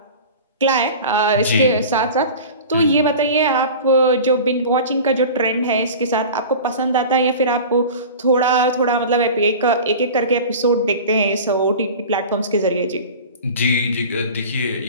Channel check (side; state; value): both; inverted; correlation -0.36